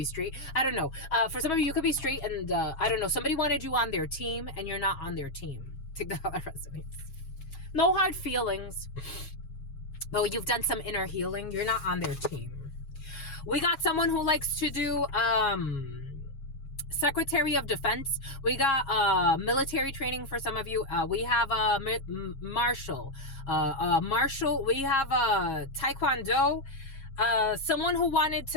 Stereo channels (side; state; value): right; late; 7.3 ms